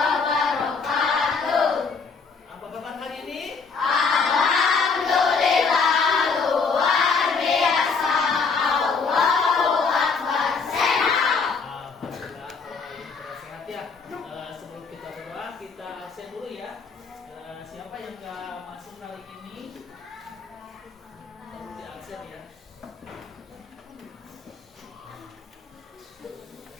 Apa kabar hari ini? Alhamdulillah luar biasa. Allahu Akbar. Sehat. Alhamdulillah kalau ini pada sehat ya. Sebelum kita berdoa, kita absen dulu ya. Siapa yang nggak masuk kali ini perlu di absen ya.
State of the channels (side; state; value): right; quieter; 5.0 dB